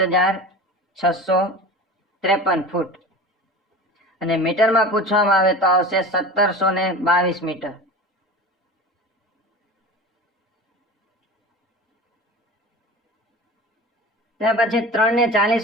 ફૂટ. અને મીટરમાં પૂછવામાં આવે તો આવશે 1722 મીટર. ત્યાર પછી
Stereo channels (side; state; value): both; normal; correlation 0.33